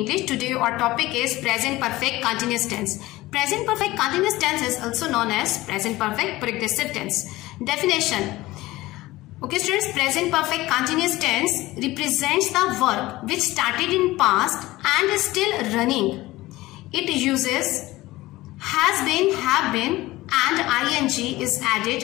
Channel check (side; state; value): right; quieter; 18.4 dB